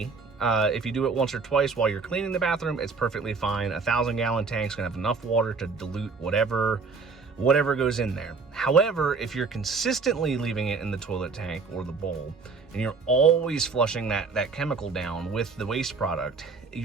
if you do it once or twice while you're cleaning the bathroom, it's perfectly fine. 1,000-gallon tank's gonna have enough water to dilute whatever goes in there. However, if you're consistently leaving it in the toilet tank or the bowl, and you're always flushing that chemical down with the waste product,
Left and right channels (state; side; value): quieter; left; 4.6 dB